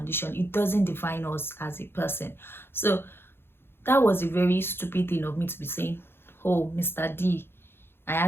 It doesn't define us as a person. So that was a very stupid thing of me to be saying, oh, Mr. D, I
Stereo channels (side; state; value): right; late; 0.11 ms